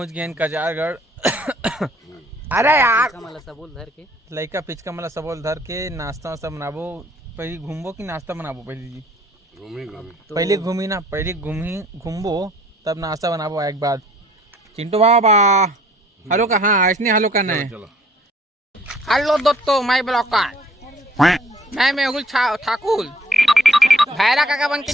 गए कचारगढ़ अरे यार मला सबोल धर के लइका पिचका मला सबोल धर के नाश्ता सब बनाबो पहले घूमबो कि नाश्ता बनाबो पहले जी पहले घूमी ना पहले घूमबो तब नाश्ता बनाबो एक बाद चिंटू बाबा हेलो का हाँ इसने हेलो करना है हेलो दोस्तों माय ब्लॉगर मैं मेहुल ठाकुर भैरा काका बन के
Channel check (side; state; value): both; normal; correlation 0.58